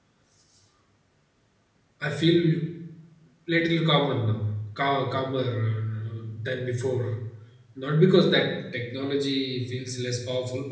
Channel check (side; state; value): both; identical; correlation 1.00